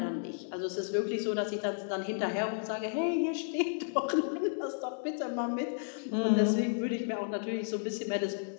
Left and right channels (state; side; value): silent; right; digital silence